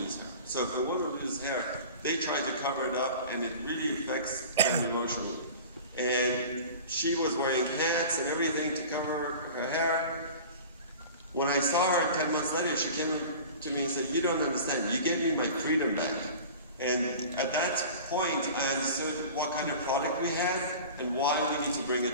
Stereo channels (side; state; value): both; inverted; correlation -0.38